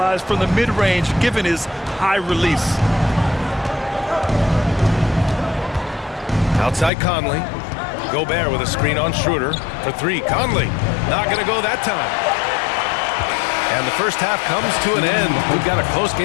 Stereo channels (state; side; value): drops out; right; at 6.9 s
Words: from the mid-range given his high release. Outside Conley. Gobert with a screen on Schroeder for 3. Conley not going to go that time. And the first half comes to an end. We've got a close